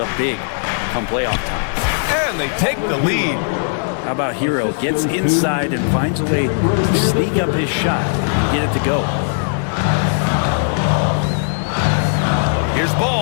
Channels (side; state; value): right; silent; 63 dB below the other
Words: big come playoff time. And they take the lead. How about Hero? Gets inside and finds a way to sneak up his shot and get it to go. Here's